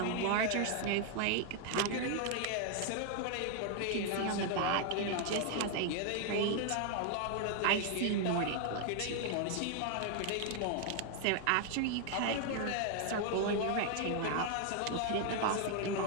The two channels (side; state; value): both; different; correlation 0.00